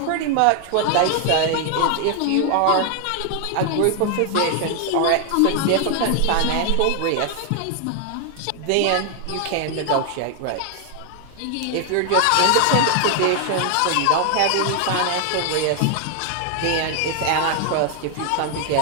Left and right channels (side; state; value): both; different; correlation 0.00